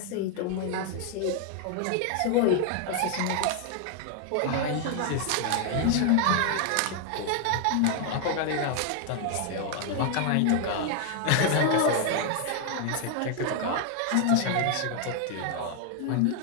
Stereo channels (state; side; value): different; both; correlation 0.00